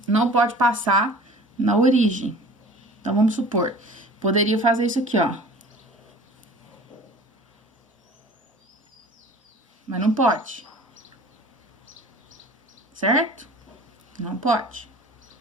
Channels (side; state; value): both; normal; correlation 0.44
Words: não pode passar na origem. Então, vamos supor, poderia fazer isso aqui, ó. Mas não pode. Certo? Não pode.